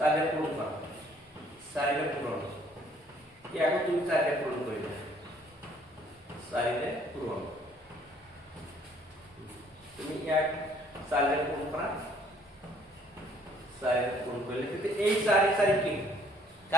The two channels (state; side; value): normal; both; correlation 0.61